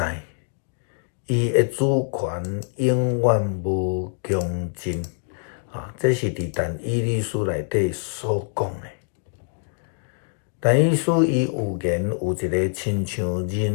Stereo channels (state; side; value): silent; right; 62 dB below the other